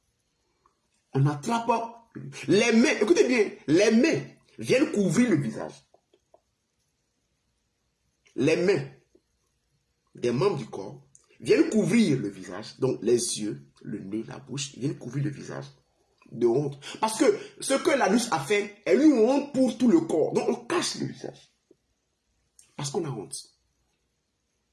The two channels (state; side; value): identical; both; correlation 1.00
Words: On attrape les mains. Écoutez bien, les mains viennent couvrir le visage. Les mains des membres du corps viennent couvrir le visage. Donc les yeux, le nez, la bouche, viennent couvrir le visage de honte. Parce que ce que l'anus a fait est une honte pour tout le corps. Donc on cache le visage. Parce qu'on a honte.